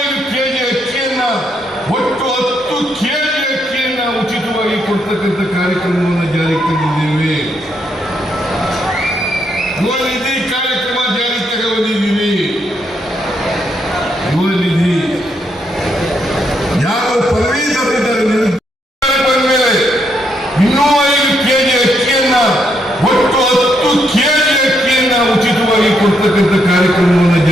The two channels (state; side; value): normal; both; correlation 0.76